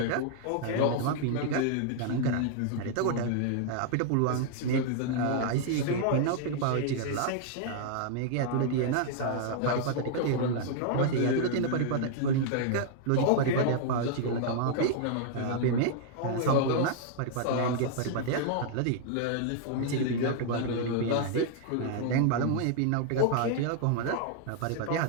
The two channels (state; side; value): different; both; correlation -0.01